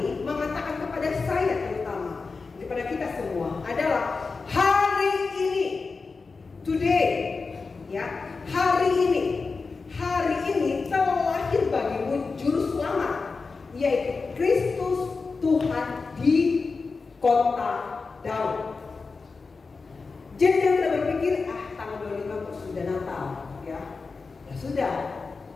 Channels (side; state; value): right; quieter; 4.4 dB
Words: mengatakan kepada saya terutama, kepada kita semua, adalah hari ini, today, ya, hari ini telah lahir bagimu juru selamat, yaitu Kristus Tuhan di kota Daud. Jadi jangan kita berpikir, tanggal 25 kok sudah Natal, ya. Ya sudah,